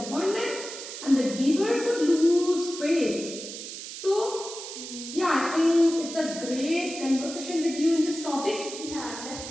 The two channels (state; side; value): noise; right; hiss, 10 dB below the sound